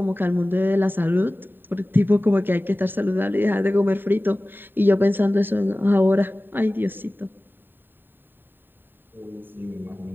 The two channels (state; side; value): late; left; 0.095 ms